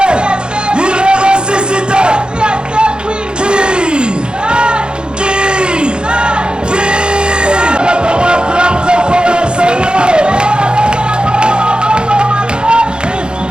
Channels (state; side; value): late; left; 0.050 ms